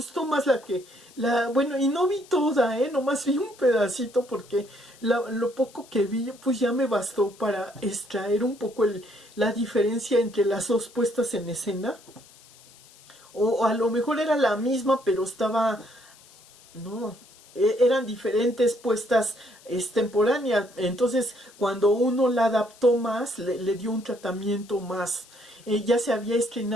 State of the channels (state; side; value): noise; left; hiss, 25 dB below the sound